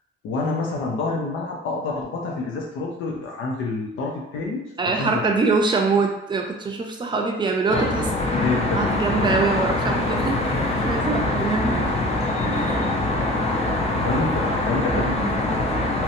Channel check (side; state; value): both; normal; correlation 0.41